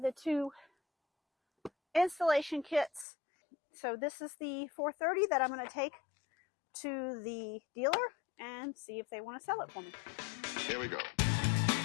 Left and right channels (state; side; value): drops out; right; at 3.1 s